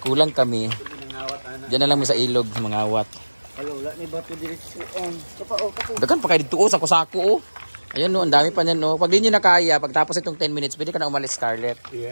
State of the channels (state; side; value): inverted; both; correlation -1.00